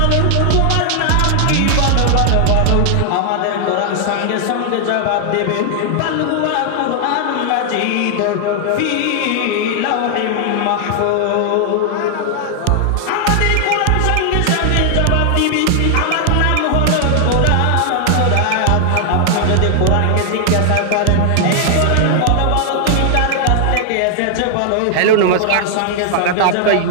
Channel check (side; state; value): both; different; correlation 0.00